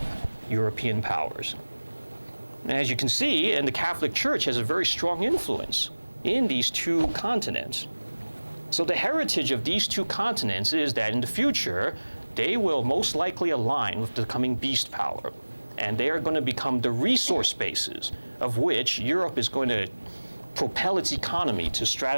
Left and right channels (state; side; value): inverted; both; correlation -1.00